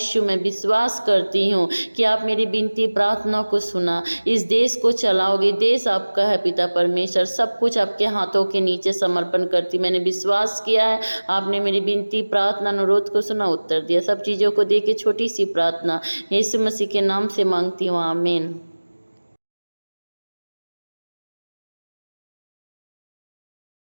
मैं विश्वास करती हूँ कि आप मेरी विनती प्रार्थना को सुना, इस देश को चलाओगे, देश आपका है पिता परमेश्वर, सब कुछ आपके हाथों के नीचे समर्पण करती। मैंने विश्वास किया है, आपने मेरी विनती प्रार्थना अनुरोध को सुना, उत्तर दिया। सब चीज़ों को दे के छोटी सी प्रार्थना यीशु मसीह के नाम से मांगती हूँ, आमीन।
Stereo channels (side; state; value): both; inverted; correlation -1.00